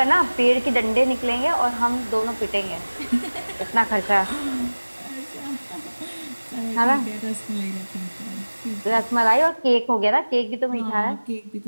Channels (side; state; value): both; inverted; correlation -1.00